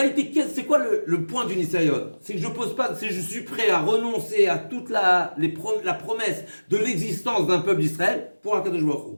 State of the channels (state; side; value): inverted; both; correlation -1.00